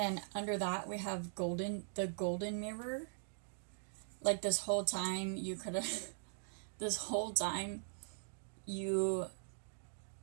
under that we have the golden mirror. Like, this whole time you could have this whole time you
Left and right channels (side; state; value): left; silent; digital silence